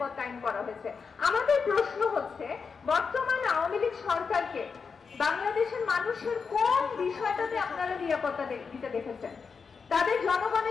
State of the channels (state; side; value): quieter; right; 5.5 dB